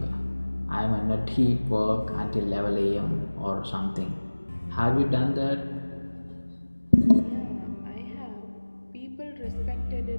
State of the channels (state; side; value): inverted; both; correlation -1.00